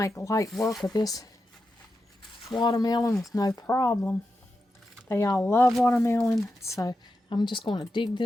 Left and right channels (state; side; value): normal; both; correlation 0.89